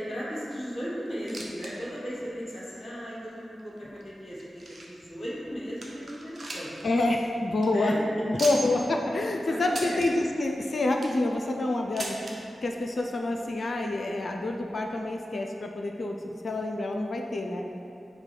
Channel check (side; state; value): both; normal; correlation 0.91